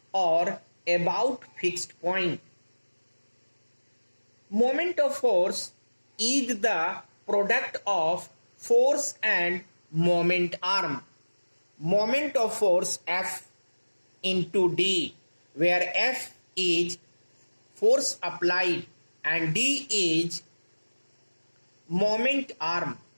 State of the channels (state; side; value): inverted; both; correlation -1.00